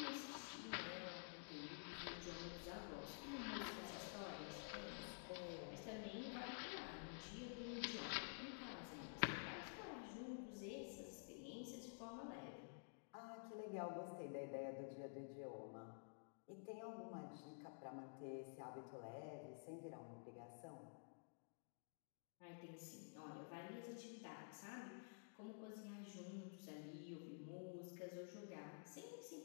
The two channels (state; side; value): silent; right; digital silence